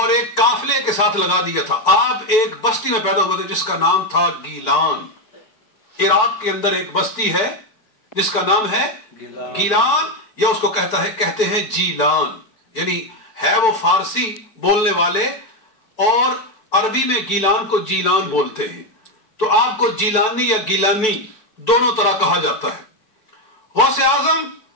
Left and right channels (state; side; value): late; right; 4.6 ms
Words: एक काफिले के साथ लगा दिया था। आप एक बस्ती में पैदा हुए थे जिसका नाम था गीलान। इराक के अंदर एक बस्ती है जिसका नाम है गीलान, या उसको कहते हैं जीलान, यानी है वो फारसी बोलने वाले और अरबी में गीलान को जीलान बोलते हैं। तो आपको जीलानी या गीलानी दोनों तरह कहा जाता है। गौसे आजम